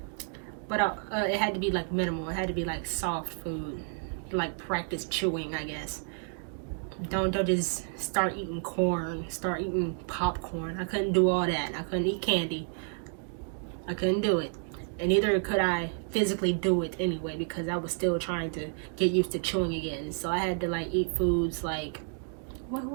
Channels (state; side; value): silent; left; 57 dB below the other